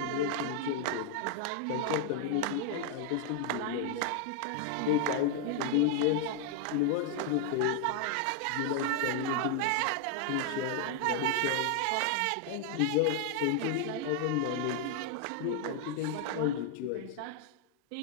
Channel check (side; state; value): both; different; correlation 0.00